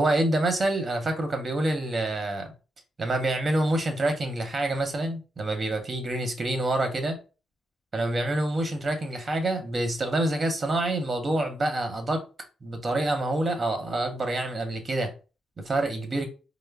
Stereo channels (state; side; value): normal; both; correlation 0.85